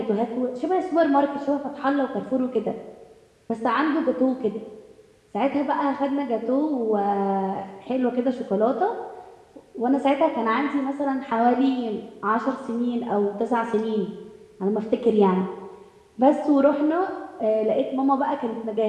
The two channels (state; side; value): identical; both; correlation 1.00